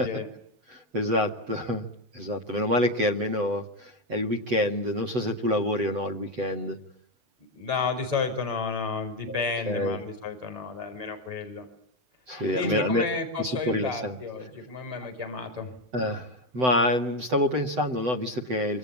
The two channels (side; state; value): left; late; 7.9 ms